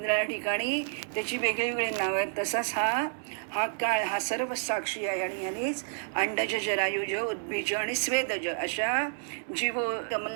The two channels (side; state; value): left; silent; digital silence